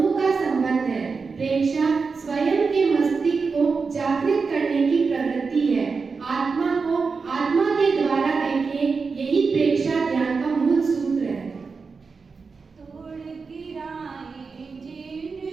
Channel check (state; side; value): quieter; left; 4.8 dB